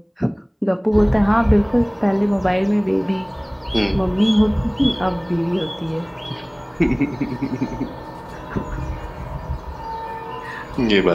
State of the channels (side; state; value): both; identical; correlation 1.00